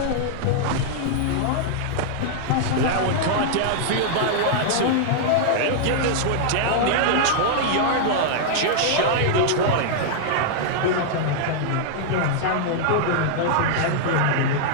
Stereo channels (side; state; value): both; different; correlation -0.01